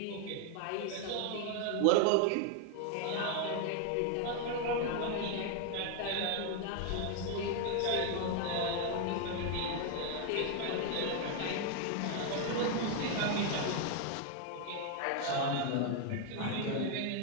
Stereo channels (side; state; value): both; different; correlation 0.01